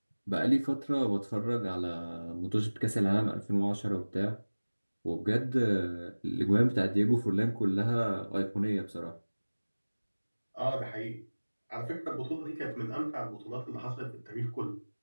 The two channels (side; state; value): both; inverted; correlation -1.00